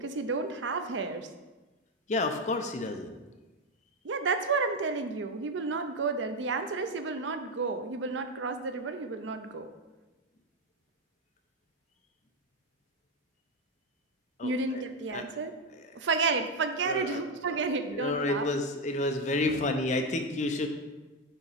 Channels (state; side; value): normal; both; correlation 0.08